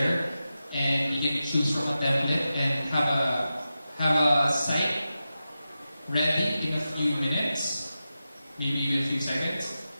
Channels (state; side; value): inverted; both; correlation -0.92